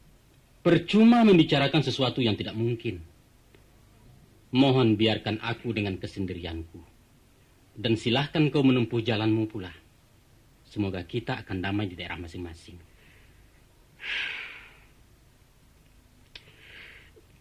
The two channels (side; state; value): both; identical; correlation 1.00